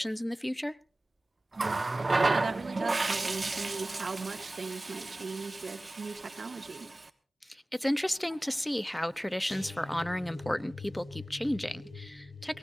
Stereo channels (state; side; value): normal; both; correlation 0.97